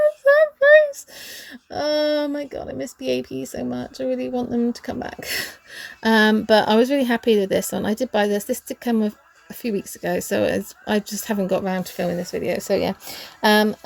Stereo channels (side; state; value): both; identical; correlation 1.00